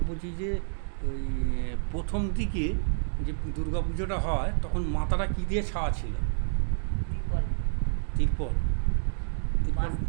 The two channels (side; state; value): left; silent; digital silence